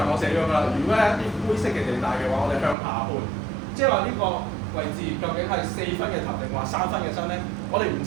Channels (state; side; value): drops out; left; at 2.8 s